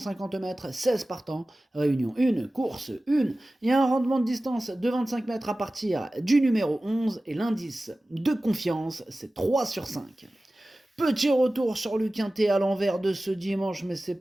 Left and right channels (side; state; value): both; normal; correlation 0.96